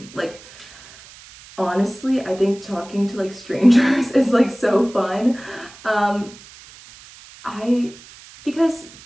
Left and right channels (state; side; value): noise; right; hiss, 20 dB below the sound